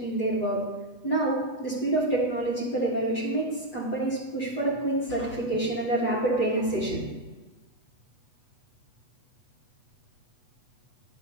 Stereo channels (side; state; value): right; late; 8.1 ms